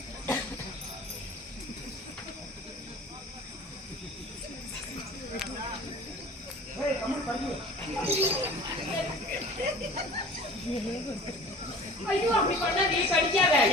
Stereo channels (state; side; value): normal; both; correlation 0.42